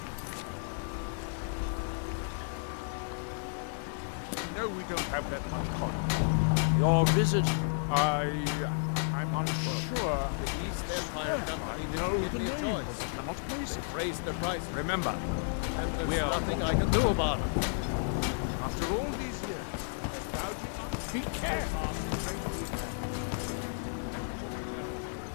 no, we don't have that much coin. Your visit, I'm unsure. The East Empire Company didn't give me a choice. Cannot place it. They've raised their prices. Remember, And there's nothing I can do about it. after all these years, they're gouging us. Be careful.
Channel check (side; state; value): right; silent; digital silence